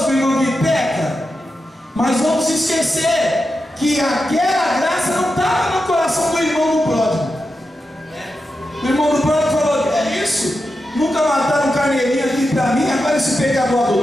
com o irmão que peca. Mas vamos esquecer que aquela graça não estava no coração do irmão do pródigo. O irmão do pródigo falou: é isso? Nunca mataram um carneirinho aqui para mim, agora esse pecador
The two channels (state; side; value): normal; both; correlation 0.89